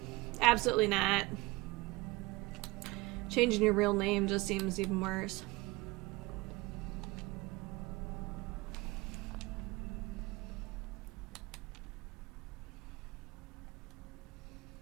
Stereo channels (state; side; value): quieter; left; 22.8 dB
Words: absolutely not. Changing your real name just seems even worse.